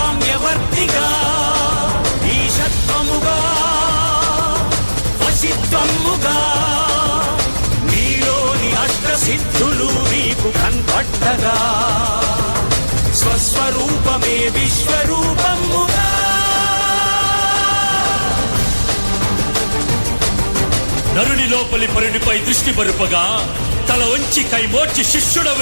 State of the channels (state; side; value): inverted; both; correlation -1.00